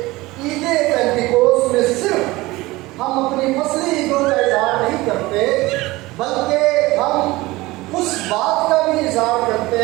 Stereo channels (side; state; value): left; quieter; 20.2 dB